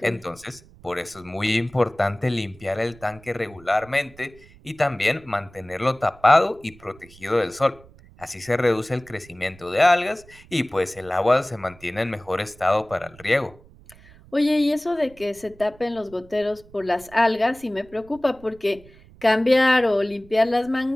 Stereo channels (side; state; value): right; noise; rumble, 24 dB below the sound